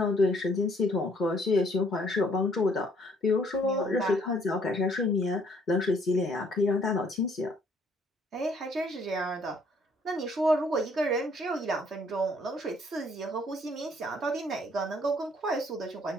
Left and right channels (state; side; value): normal; both; correlation 0.63